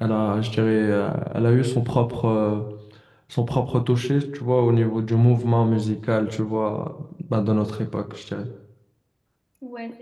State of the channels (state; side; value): identical; both; correlation 1.00